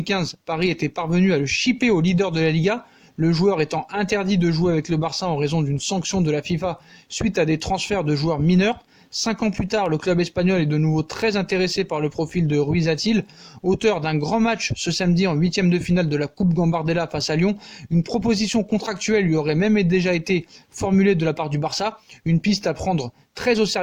Paris était parvenu à le shipper au leader de la Liga, le joueur étant interdit de jouer avec le Barça en raison d'une sanction de la FIFA suite à des transferts de joueurs mineurs. 5 ans plus tard, le club espagnol est de nouveau très intéressé par le profil de Ruiz-Athil. Auteur d'un grand match ce samedi en 8e de finale de la Coupe Gambardella face à Lyon, une proposition contractuelle lui aurait même déjà été formulée de la part du Barça, une piste à prendre très au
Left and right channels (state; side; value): identical; both; correlation 1.00